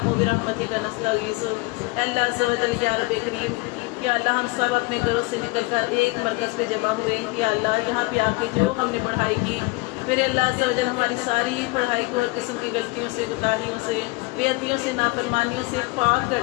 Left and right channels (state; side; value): quieter; right; 24.7 dB